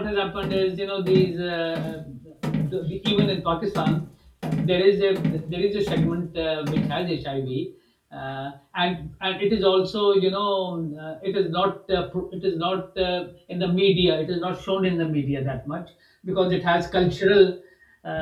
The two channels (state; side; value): identical; both; correlation 1.00